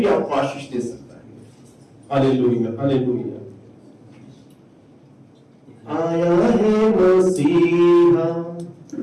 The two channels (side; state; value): both; identical; correlation 1.00